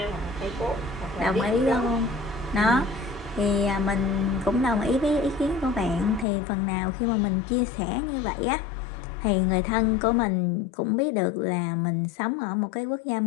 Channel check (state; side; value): drops out; right; at 6.2 s